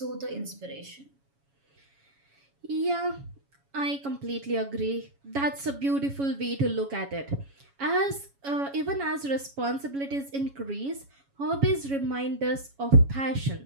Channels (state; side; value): late; left; 7.2 ms